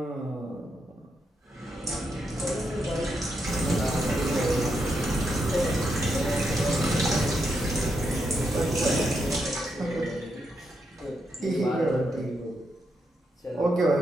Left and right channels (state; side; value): normal; both; correlation 0.82